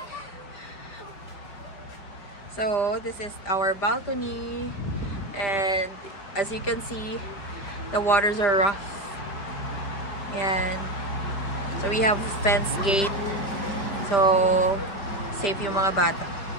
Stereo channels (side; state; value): right; late; 5.0 ms